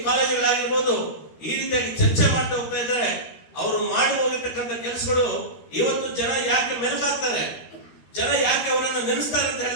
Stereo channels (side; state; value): right; late; 13 ms